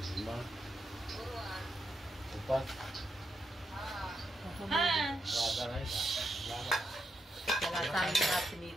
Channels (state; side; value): normal; both; correlation 0.83